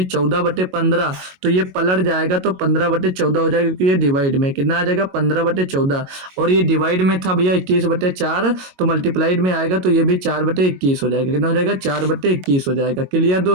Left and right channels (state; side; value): late; left; 22 ms